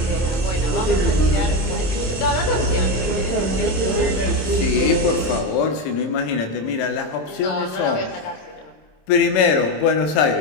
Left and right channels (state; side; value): late; right; 27 ms